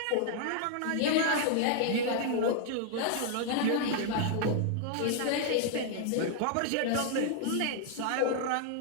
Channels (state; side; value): different; both; correlation -0.01